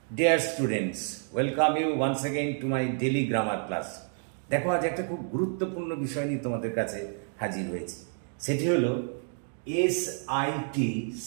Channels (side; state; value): left; silent; 58 dB below the other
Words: Dear students, welcome you once again to my daily grammar class. দেখো আজ একটা খুব গুরুত্বপূর্ণ বিষয় নিয়ে তোমাদের কাছে হাজির হয়েছি। সেটি হলো এসআইটি